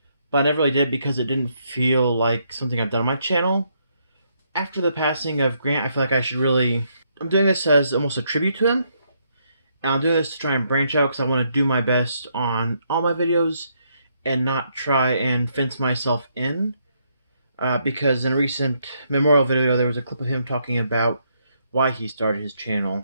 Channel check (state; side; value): inverted; both; correlation -0.74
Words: but I never really did because it didn't feel like something I've done on my channel. After the passing of Grant, I feel like I should really. I'm doing this as almost a tribute to him. And I'm doing this to try and branch out because I want to do my best on all my videos and not try and fence myself in. Because in a recent memorial video, there was a clip of him talking about why he started his channel.